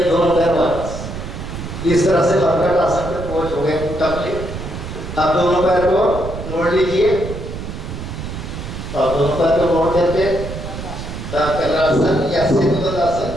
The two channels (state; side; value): noise; right; rumble, 8 dB below the sound